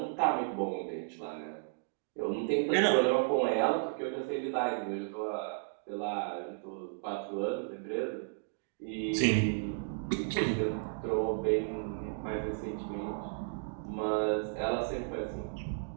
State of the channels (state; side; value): silent; left; digital silence